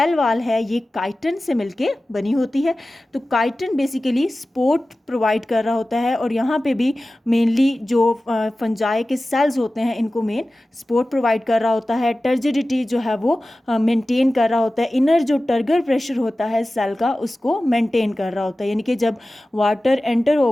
वॉल है ये काइटन से मिलके बनी होती है। तो काइटन बेसिकली सपोर्ट प्रोवाइड कर रहा होता है, और यहाँ पे भी मेनली जो फंजाई के सेल्स होते हैं इनको मेन सपोर्ट प्रोवाइड कर रहा होता है। टर्जिडिटी जो है वो मेंटेन कर रहा होता है। इनर जो टर्गर प्रेशर होता है सेल का उसको मेंटेन कर रहा होता है, यानी कि जब वाटर एंटर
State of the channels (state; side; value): normal; both; correlation 0.96